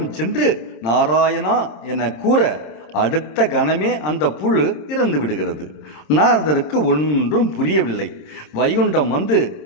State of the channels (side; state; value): right; late; 26 ms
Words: சென்று நாராயணா என கூற அடுத்த கணமே அந்த புழு இறந்து விடுகிறது. நாரதருக்கு ஒன்றும் புரியவில்லை. வைகுண்டம் வந்து,